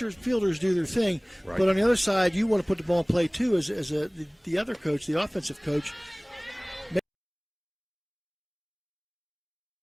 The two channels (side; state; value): both; identical; correlation 1.00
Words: your fielders do their thing. Right. But on the other side, you want to put the ball in play too, as the other coach, the offensive coach.